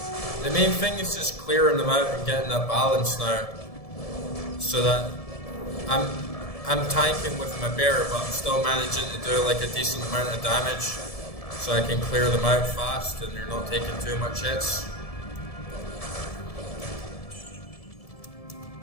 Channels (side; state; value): right; late; 1.7 ms